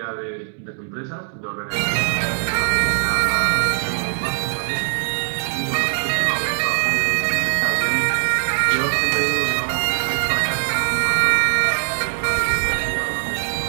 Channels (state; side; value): silent; left; 65 dB below the other